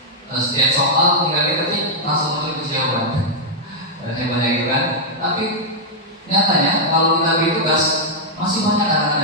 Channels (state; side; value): normal; both; correlation -0.05